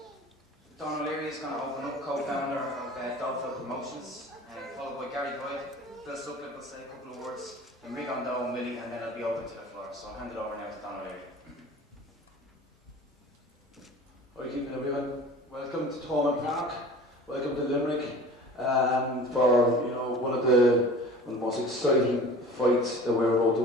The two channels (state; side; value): normal; both; correlation 0.41